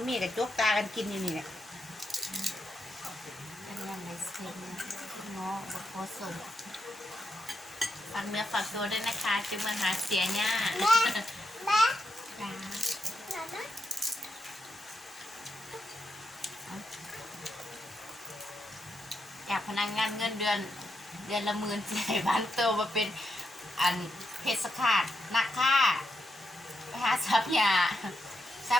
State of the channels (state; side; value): normal; both; correlation 0.83